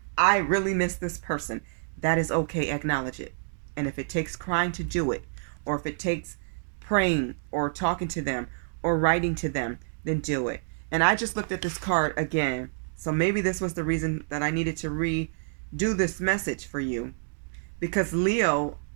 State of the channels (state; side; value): silent; left; digital silence